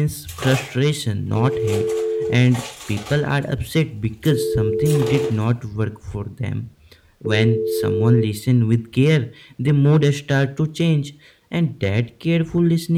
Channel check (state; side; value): identical; both; correlation 1.00